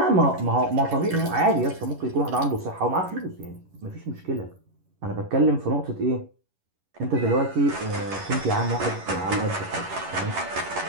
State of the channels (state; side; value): late; left; 11 ms